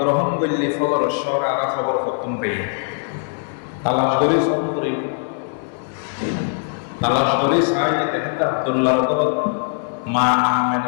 করলে ফজর শহর আর খবর খতম পেয়ে তালাশ করে চাই দেখেন আব্দুল্লাহর ঘরত মা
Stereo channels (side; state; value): right; silent; 65 dB below the other